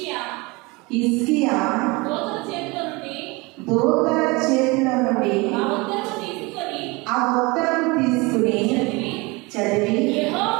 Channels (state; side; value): quieter; left; 25.3 dB